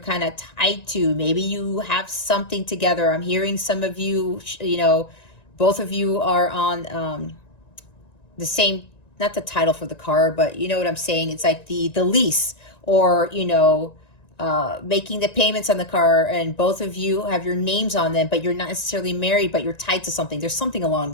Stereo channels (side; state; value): right; late; 1.9 ms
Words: of tied to. Maybe you have something together. I'm hearing some of you, you know, both of you are on the same, not the title for the car, but you know what I'm saying? It's like the lease, or, you know, making the payments on the car, and both of you have your names on them, but you're not necessarily married, but you're tied to something. There's something along